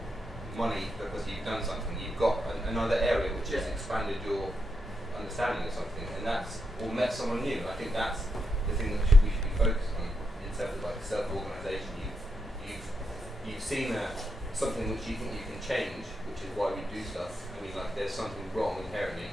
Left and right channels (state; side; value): normal; both; correlation 0.83